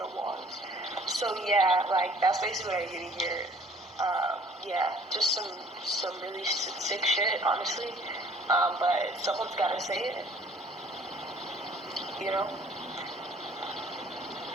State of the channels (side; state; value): both; normal; correlation 0.54